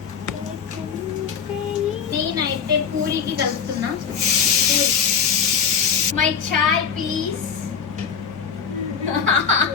నేనైతే పూరికి కలుపుతున్నా. My chai please.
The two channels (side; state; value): right; quieter; 6.9 dB